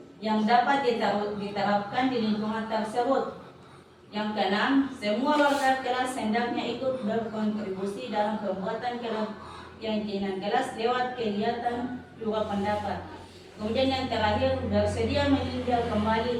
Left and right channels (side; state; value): both; identical; correlation 1.00